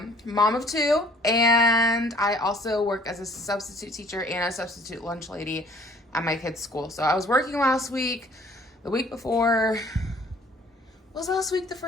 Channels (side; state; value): both; normal; correlation 0.56